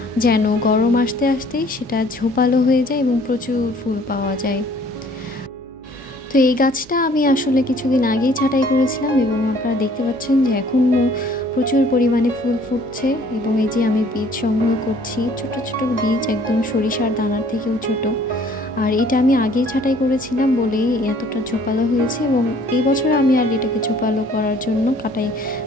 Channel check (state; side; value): noise; right; hum, 26 dB below the sound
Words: যেন গরম আসতে আসতেই সেটা ঝোপালো হয়ে যায় এবং প্রচুর ফুল পাওয়া যায়। তো এই গাছটা আমি আসলে কিছুদিন আগেই ছাঁটাই করেছিলাম এবং আপনারা দেখতে পাচ্ছেন যে এখনও প্রচুর পরিমাণে ফুল ফুটছে। এবং এই যে আমি বীজ সংগ্রহ করছি, ছোট ছোট বীজ, একদম সরিষার দানার থেকেও ছোট। আর এটা আমি আগেই ছাঁটাই করেছিলাম বলেই এতটা ঝোপালো হয়েছে। এবং এই বছর আমি আর এটাকে ঝোপালো করার জন্য কাটাই